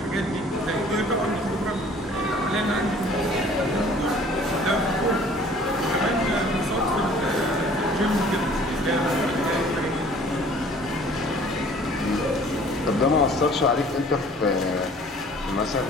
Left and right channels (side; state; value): both; normal; correlation 0.52